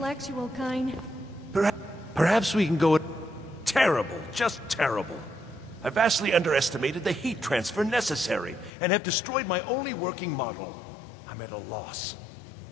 kind. Perhaps we can go... Terrible, just terrible. I vastly underestimated the heat transfer necessary, and have destroyed my only working model. I'm at a loss.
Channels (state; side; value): drops out; right; at 8.7 s